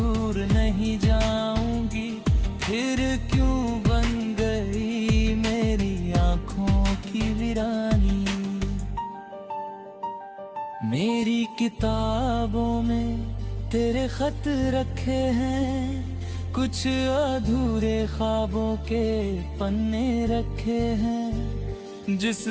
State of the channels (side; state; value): both; identical; correlation 1.00